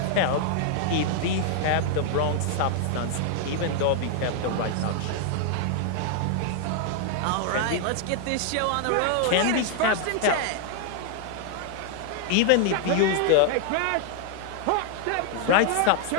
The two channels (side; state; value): both; different; correlation 0.00